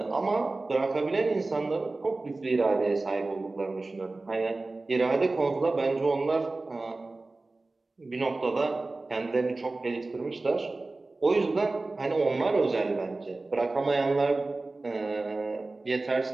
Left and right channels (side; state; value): left; quieter; 3.2 dB